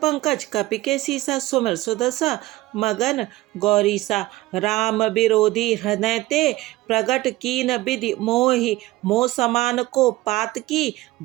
कपि के सीसा, सुमिर सुदशा मगन गौरीसा। राम विरोधी हृदय ते, प्रगट कीन विधि मोहि। मोह समान को पात की,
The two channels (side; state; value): left; quieter; 18.3 dB